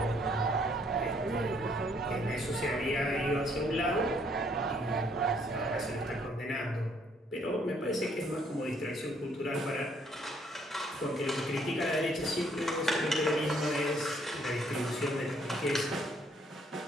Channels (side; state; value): both; normal; correlation 0.66